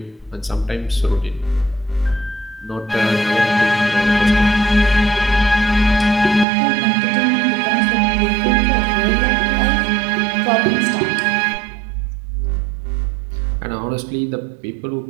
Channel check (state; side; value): drops out; left; at 6.5 s